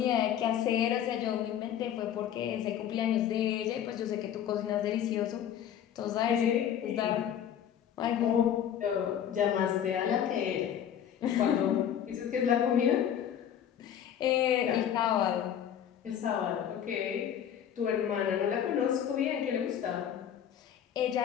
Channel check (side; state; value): right; quieter; 9.6 dB